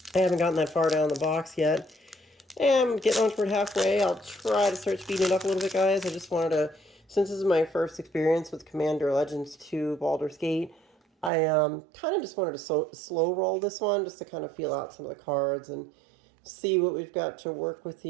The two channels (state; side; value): drops out; left; at 11.3 s